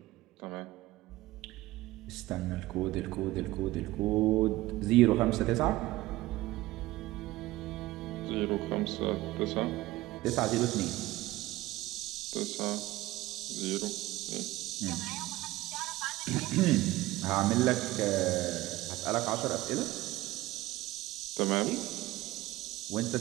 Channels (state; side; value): quieter; left; 17.7 dB